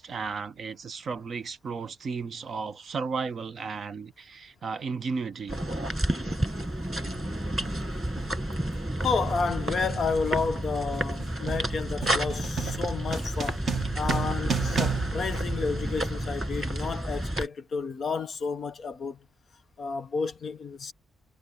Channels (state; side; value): normal; both; correlation 0.81